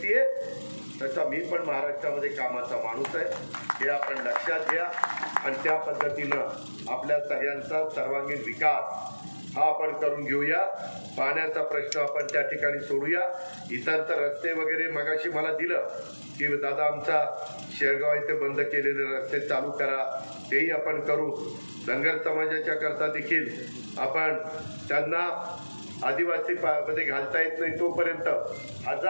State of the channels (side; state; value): both; inverted; correlation -1.00